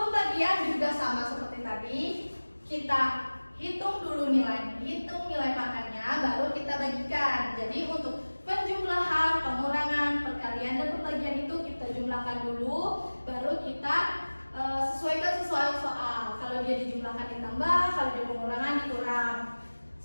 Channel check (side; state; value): both; inverted; correlation -1.00